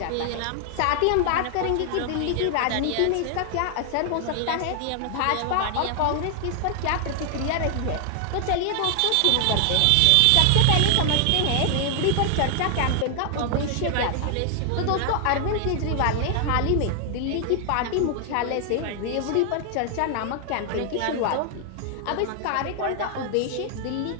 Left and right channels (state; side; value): different; both; correlation 0.00